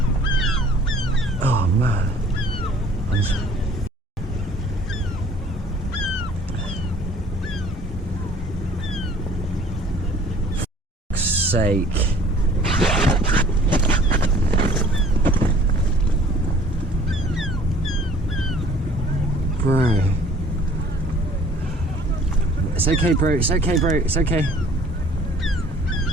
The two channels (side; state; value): both; normal; correlation 0.53